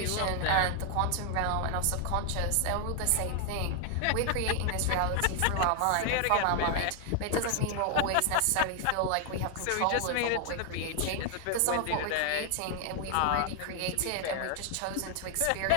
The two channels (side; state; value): both; different; correlation 0.00